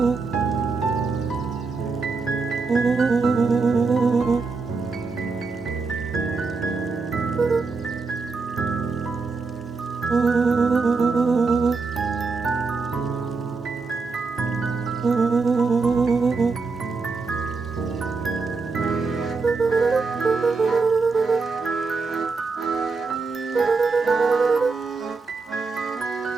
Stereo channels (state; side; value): quieter; left; 4.3 dB